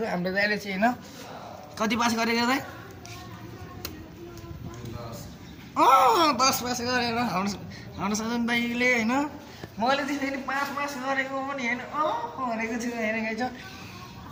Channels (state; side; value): identical; both; correlation 1.00